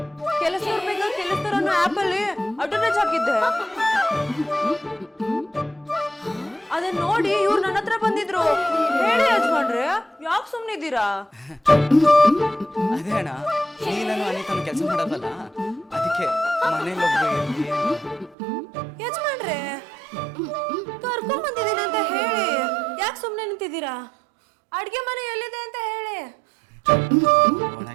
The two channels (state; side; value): drops out; left; at 18.4 s